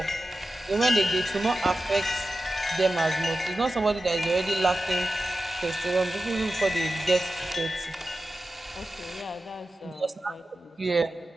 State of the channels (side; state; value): both; normal; correlation 0.93